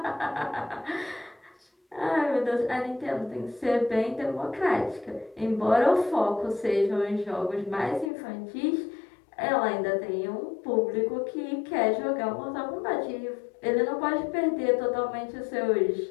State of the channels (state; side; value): drops out; right; at 8.1 s